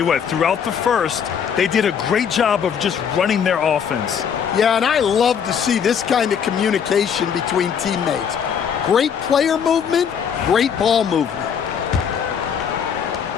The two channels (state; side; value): quieter; right; 7.5 dB